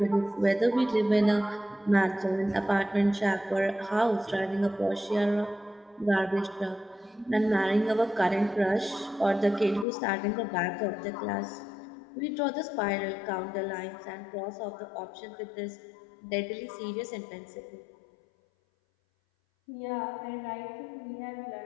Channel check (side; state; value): right; drops out; at 9.9 s